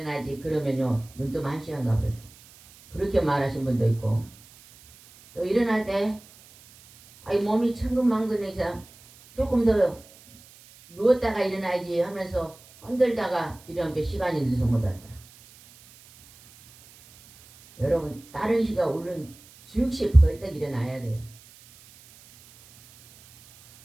그러면요 눈 뜨면 1시간 가버려요. 그렇게 말하신 분도 있고 또 일어날 때 아이 몸이 천근만근해서 조금 더 누웠다가 일어나야지 하면서 흔들다가 이런 게 시간이 늦어서 못 왔다. 여러분 다른 시가 울른 즉시 벌떡 일어나야 돼요.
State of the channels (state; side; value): noise; right; hiss, 24 dB below the sound